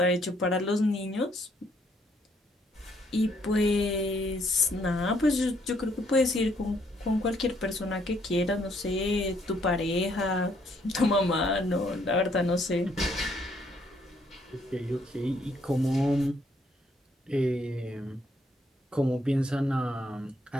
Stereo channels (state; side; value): normal; both; correlation 0.69